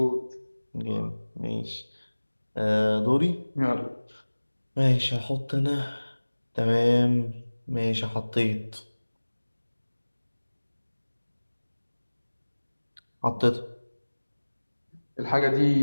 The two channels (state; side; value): inverted; both; correlation -1.00